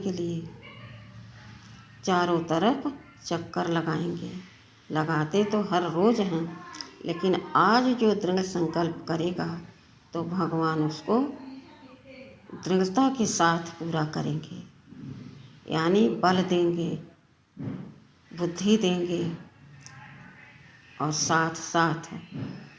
लिए चारों तरफ चक्कर लगाएंगे। लगाते तो हर रोज़ हैं, लेकिन आज जो दृढ़ संकल्प करेगा तो भगवान उसको दृढ़ता के साथ पूरा करेंगे। यानी बल देंगे, बुद्धि देंगे और साथ साथ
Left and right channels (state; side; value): identical; both; correlation 1.00